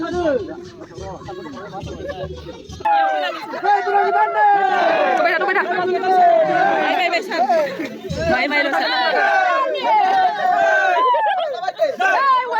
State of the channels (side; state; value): both; identical; correlation 1.00